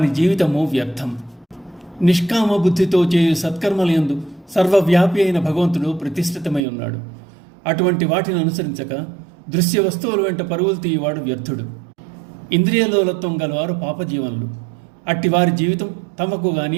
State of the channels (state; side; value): drops out; left; at 6.6 s